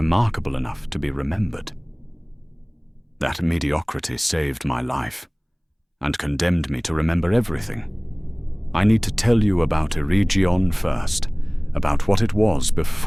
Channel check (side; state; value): both; identical; correlation 1.00